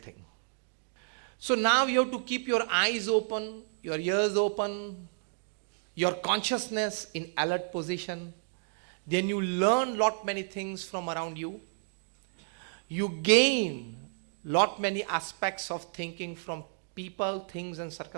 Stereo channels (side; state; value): left; silent; digital silence